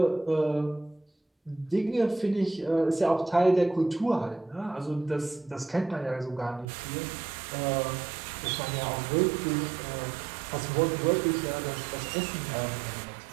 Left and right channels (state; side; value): drops out; left; at 6.7 s